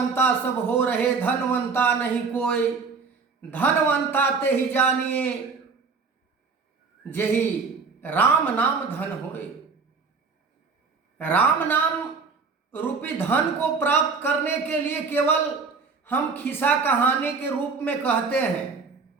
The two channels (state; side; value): quieter; left; 4.8 dB